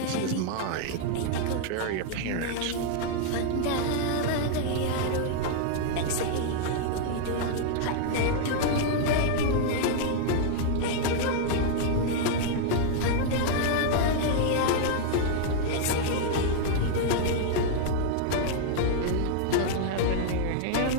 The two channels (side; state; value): both; different; correlation 0.00